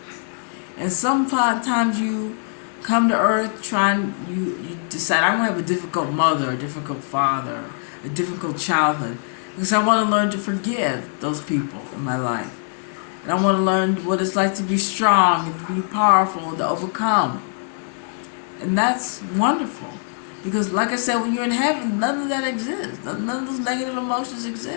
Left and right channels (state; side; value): silent; right; 64 dB below the other